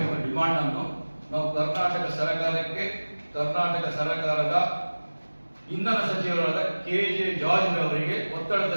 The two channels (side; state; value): both; inverted; correlation -1.00